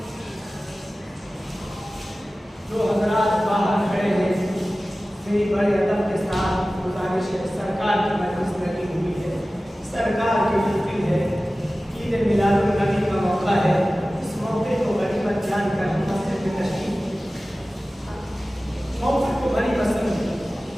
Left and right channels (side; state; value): both; normal; correlation 0.96